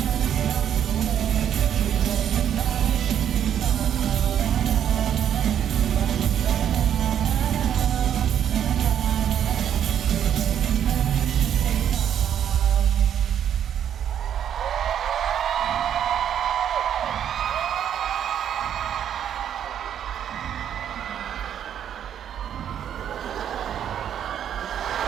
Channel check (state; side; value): quieter; left; 9.5 dB